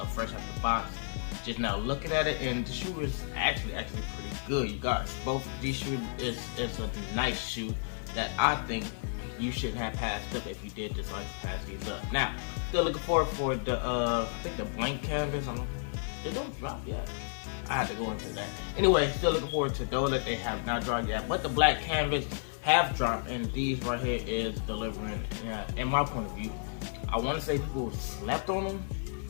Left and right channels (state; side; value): silent; right; digital silence